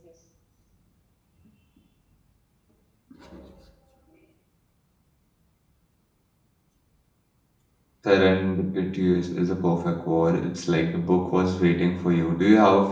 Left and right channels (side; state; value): both; identical; correlation 1.00